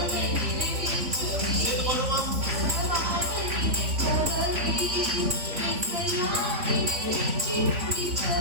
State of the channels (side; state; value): left; late; 3.5 ms